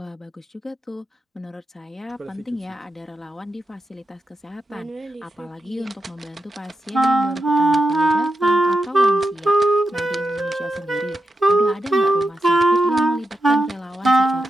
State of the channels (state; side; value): normal; both; correlation 0.88